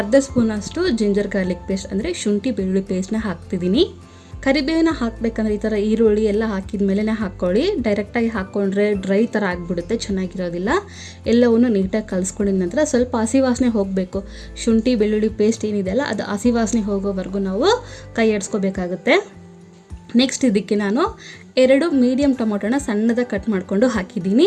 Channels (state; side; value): identical; both; correlation 1.00